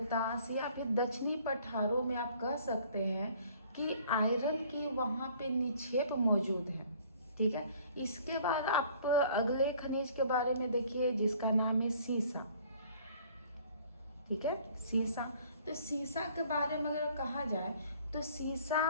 या फिर दक्षिणी पठारों में आप कह सकते हैं कि आयरन की वहाँ पे निक्षेप मौजूद है, ठीक है। इसके बाद आप अगले खनिज के बारे में देखिए जिसका नाम है सीसा, ठीक है, सीसा। तो सीसा के बारे में अगर कहा जाए तो सीसा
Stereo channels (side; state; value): both; inverted; correlation -0.55